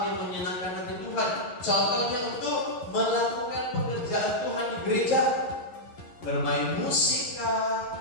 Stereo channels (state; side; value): late; right; 11 ms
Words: yang menyenangkan hati Tuhan. Contohnya untuk melakukan pekerjaan Tuhan di gereja, bermain musik kah,